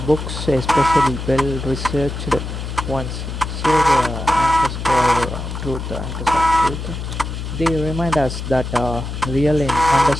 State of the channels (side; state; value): left; noise; hum, 6 dB below the sound